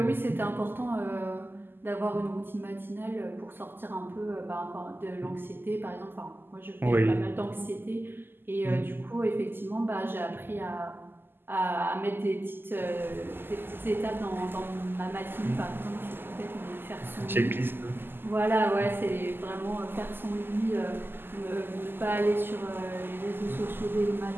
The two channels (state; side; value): late; left; 0.098 ms